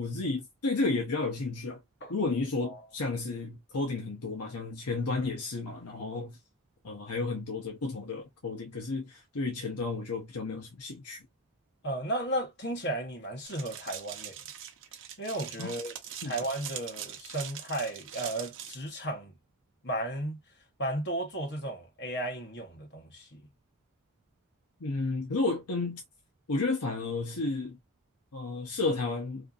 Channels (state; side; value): normal; both; correlation 0.22